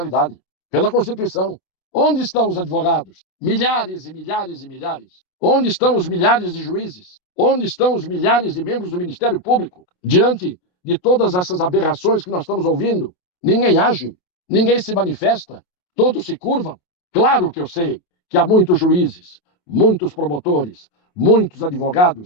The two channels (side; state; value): right; late; 28 ms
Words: pela Constituição. Onde estão os advogados? Milhares e milhares e milhares. Onde estão os milhares de juízes? Onde estão os milhares de membros do Ministério Público? Diante de todas essas aberrações que nós estamos ouvindo, ninguém age, ninguém se manifesta, todos se curvam. Claro que eu sei que há muitos juízes, muitos promotores, muitos